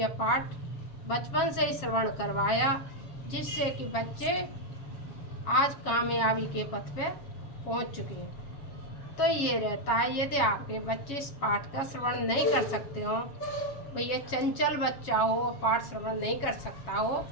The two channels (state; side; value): late; right; 7.2 ms